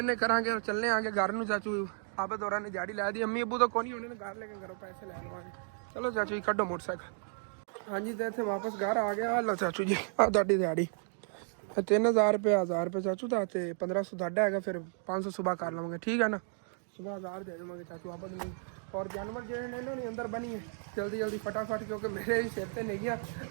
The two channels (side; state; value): left; silent; 56 dB below the other